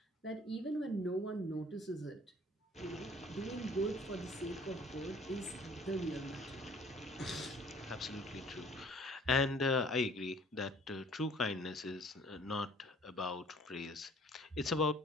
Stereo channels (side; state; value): both; normal; correlation 0.54